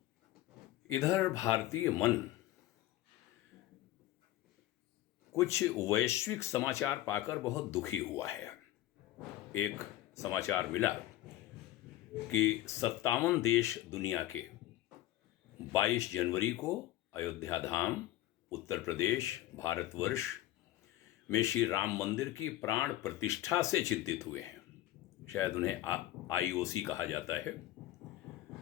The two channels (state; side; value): quieter; right; 14.6 dB